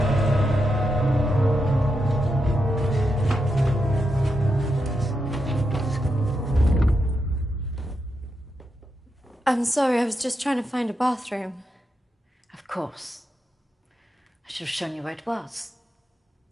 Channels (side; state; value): both; normal; correlation 0.85